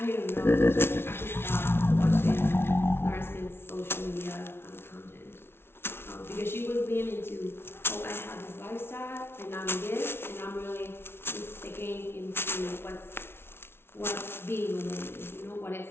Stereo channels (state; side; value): late; right; 0.12 ms